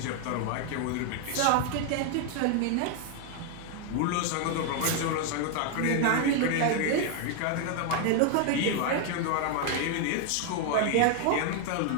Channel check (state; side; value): different; both; correlation 0.00